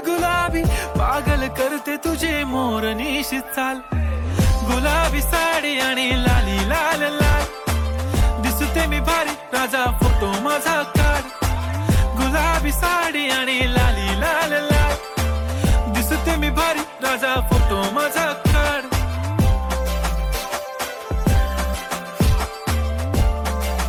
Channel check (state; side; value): identical; both; correlation 1.00